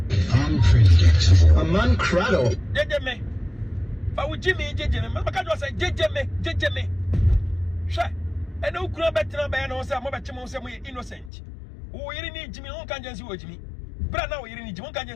Unpredictable. Amankrado. Jejeme. Fa wo jimi jejeme. Maka do say jejeme. Hwe. Ene ukura betina be na wo say mo be chemo say mo innocent. Wo yiri ni jimi won kan jansi wo jimi. Bra na wo yiri ni jimi won kan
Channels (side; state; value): right; drops out; at 11.3 s